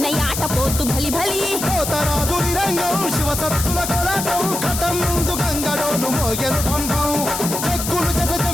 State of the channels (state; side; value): noise; left; hiss, 4 dB below the sound